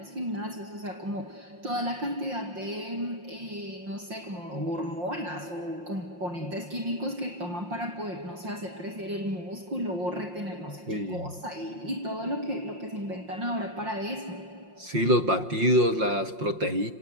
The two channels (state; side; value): late; left; 5.7 ms